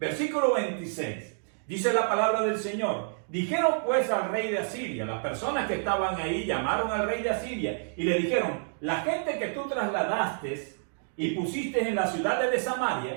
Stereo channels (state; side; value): silent; left; digital silence